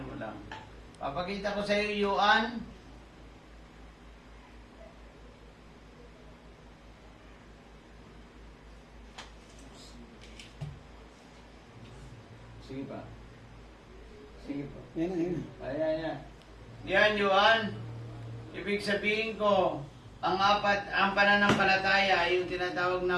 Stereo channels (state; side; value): identical; both; correlation 1.00